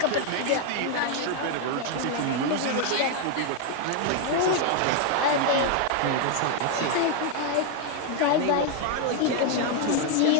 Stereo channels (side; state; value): both; different; correlation 0.01